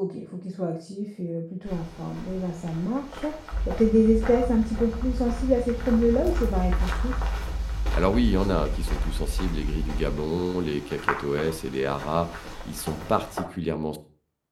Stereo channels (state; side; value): identical; both; correlation 1.00